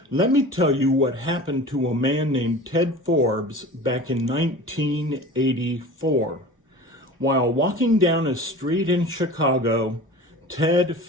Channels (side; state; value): both; normal; correlation 0.38